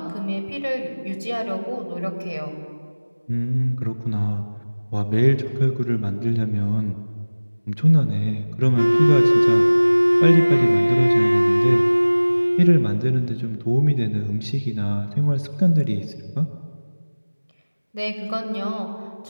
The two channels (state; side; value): inverted; both; correlation -1.00